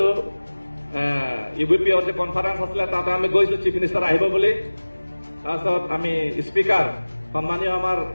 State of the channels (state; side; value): inverted; both; correlation -1.00